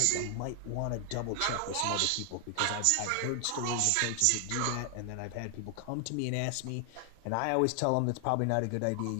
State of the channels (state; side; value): different; both; correlation 0.00